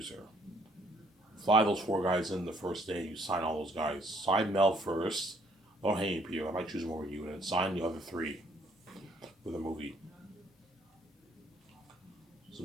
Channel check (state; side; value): normal; both; correlation 0.64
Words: Fly those 4 guys in the first day. You sign all those guys. Sign Mel first. Don't hate me, Peter. I might choose him over you, and then sign the other 3 for the movie. So